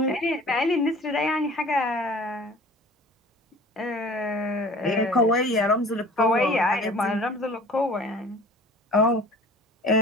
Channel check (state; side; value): normal; both; correlation 0.45